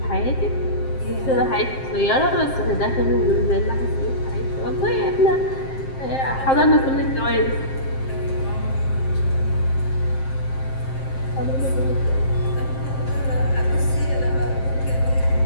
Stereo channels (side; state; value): right; late; 7.6 ms